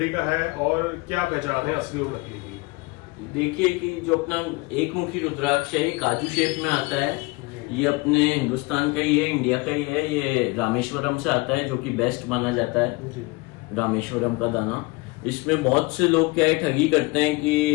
का है और क्या पहचान है असली और नकली की? देखिए कि जो अपना एक मुखी रुद्राक्ष है, ये काजू शेप में आता है। ये अपने हिंदुस्तान का ही है, इंडिया का ही है। ये रामेश्वरम से आता है, जो कि बेस्ट माना जाता है, जी रामेश्वरम का दाना। इसमें बहुत से लोग क्या है, ठगी करते हैं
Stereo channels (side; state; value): right; quieter; 25.2 dB